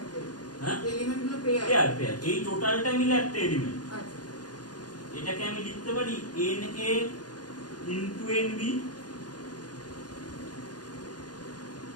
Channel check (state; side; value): late; right; 0.69 ms